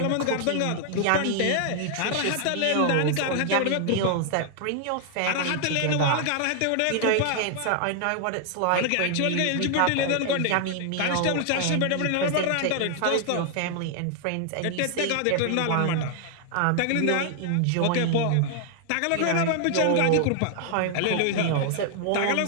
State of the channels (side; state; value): both; different; correlation 0.00